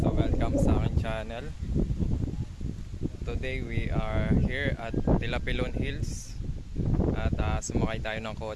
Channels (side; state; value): both; identical; correlation 1.00